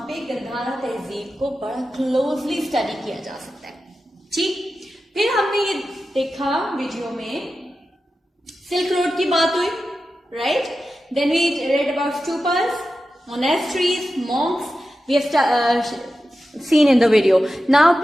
पे गंधारा तहजीब को बड़ा क्लोजली स्टडी किया जा सकता है. ठीक, फिर हमने ये देखा वीडियो में सिल्क रोड की बात हुई, right. Then we read about stupas, monasteries, monks. We have seen in the video. Now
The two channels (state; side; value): normal; both; correlation 0.92